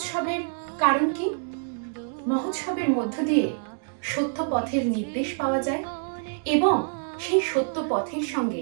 কারণ কি? মহোৎসবের মধ্য দিয়ে সত্য পথের নির্দেশ পাওয়া যায় এবং সেই সত্য পথের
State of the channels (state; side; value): silent; left; 61 dB below the other